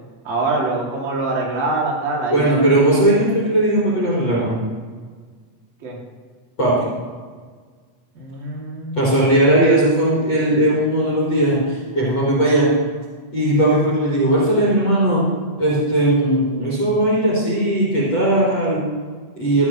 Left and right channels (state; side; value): late; right; 8.2 ms